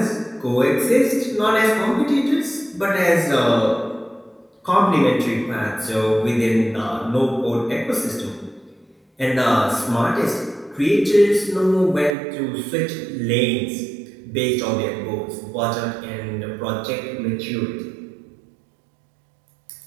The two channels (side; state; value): left; drops out; at 12.2 s